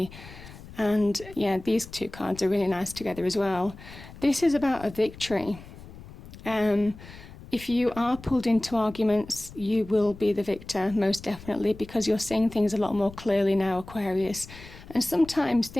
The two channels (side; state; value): left; noise; rumble, 17 dB below the sound